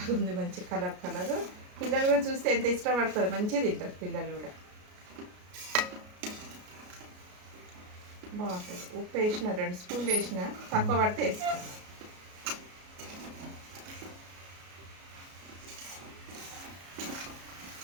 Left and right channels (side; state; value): left; late; 33 ms